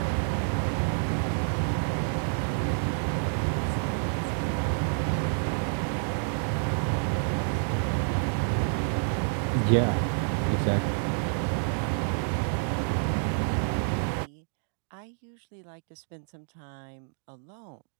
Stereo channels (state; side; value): silent; left; 59 dB below the other